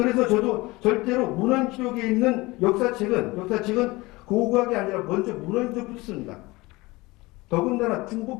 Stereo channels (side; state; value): right; quieter; 21.9 dB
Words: 저도 절대로 문헌 기록에 있는 역사책은 고고학이 아니라 먼저 문헌적으로 씁니다. 더군다나